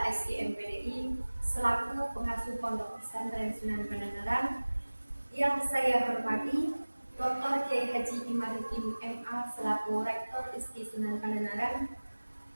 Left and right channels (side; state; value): both; inverted; correlation -1.00